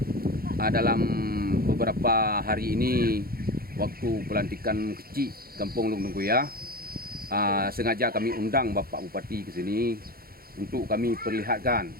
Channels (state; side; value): late; left; 0.44 ms